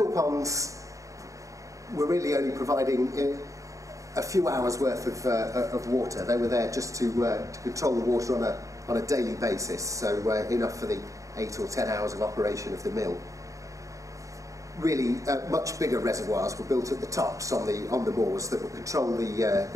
ponds were really only providing a few hours worth of water. They were there just to control the water on a daily basis, so enough for the 8 or 10 hours of operation of the mill. Really, much bigger reservoirs were built at the tops on the moors that would control the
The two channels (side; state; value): left; late; 0.16 ms